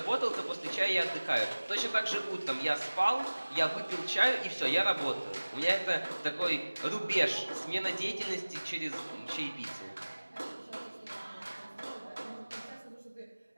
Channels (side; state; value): both; inverted; correlation -1.00